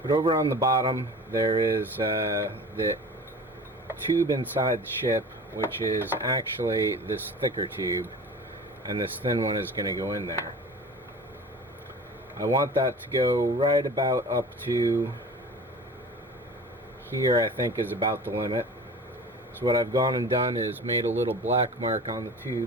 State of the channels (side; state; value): both; normal; correlation 0.39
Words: But over on the bottom there is the tube inside the ship, which is actually this thicker tube, and this thin one is going to go in there. I want that to go right about up to here. I think is about the limit. So what I've gone and done is made a little black mark on the